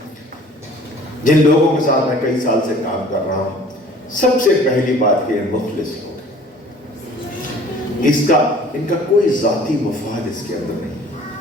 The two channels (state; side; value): normal; both; correlation 0.49